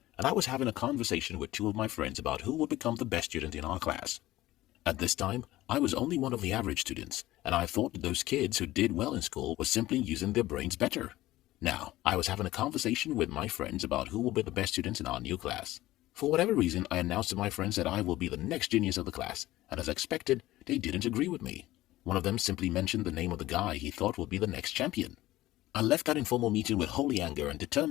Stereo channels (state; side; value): quieter; right; 16.4 dB